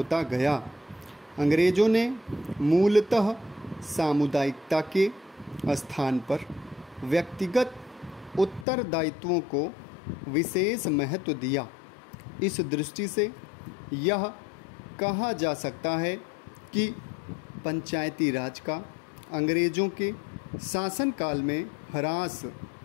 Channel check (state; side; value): drops out; right; at 8.7 s